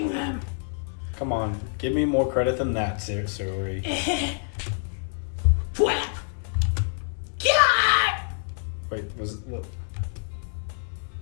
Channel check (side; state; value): right; silent; 60 dB below the other